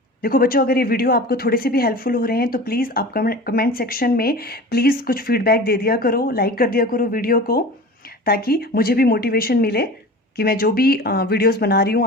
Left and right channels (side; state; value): both; normal; correlation 0.36